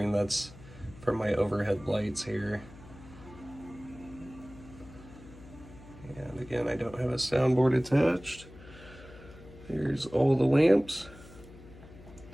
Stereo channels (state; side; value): noise; left; hum, 19 dB below the sound